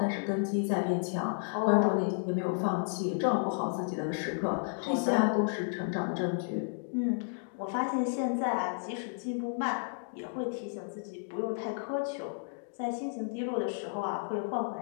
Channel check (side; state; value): right; silent; digital silence